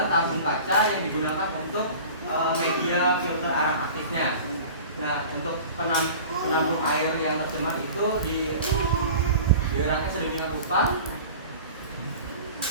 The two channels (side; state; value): both; inverted; correlation -0.39